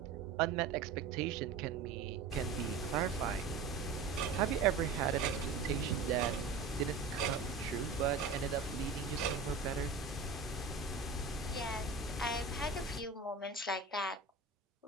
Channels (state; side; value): quieter; left; 4.5 dB